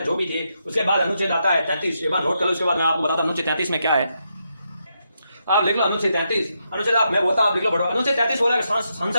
जो भी थी। उसके बाद अनुच्छेद आता है 33, एक बार नोट कर लो, उसके बाद मैं आपको बताता हूं अनुच्छेद 33 में क्या है। आप लिख लो अनुच्छेद 33, अनुच्छेद आप मैं बोलता हूं आप लिख लो पढ़ो। अनुच्छेद 33 बोला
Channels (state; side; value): inverted; both; correlation -0.82